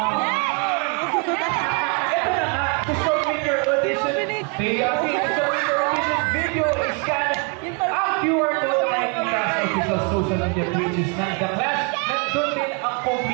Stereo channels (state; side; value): quieter; left; 33.9 dB